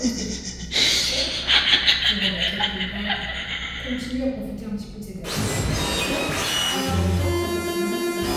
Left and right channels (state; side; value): identical; both; correlation 1.00